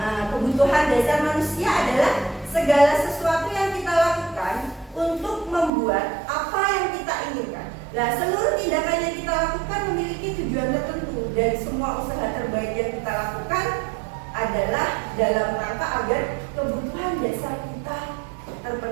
kebutuhan dasar manusia adalah segala sesuatu yang kita lakukan untuk membuat apa yang kita inginkan. Nah, seluruh tindakan yang kita lakukan memiliki tujuan tertentu dan semua usaha terbaik yang kita lakukan adalah dalam rangka agar kebutuhan dasar kita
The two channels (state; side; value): drops out; left; at 5.7 s